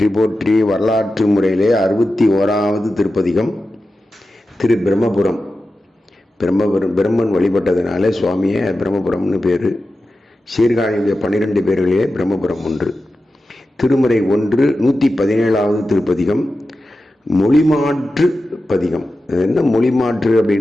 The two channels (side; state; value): both; normal; correlation 0.92